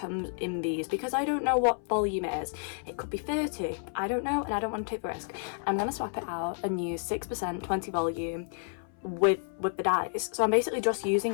in these because I don't know what volume it is. It could be 30. I don't know and I don't want to take the risk. I'm going to swap it out and use 6% 20 volume with the dyes. So I'm basically just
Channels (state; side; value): silent; right; 58 dB below the other